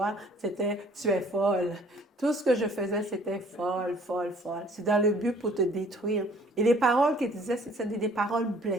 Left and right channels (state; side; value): normal; both; correlation 0.56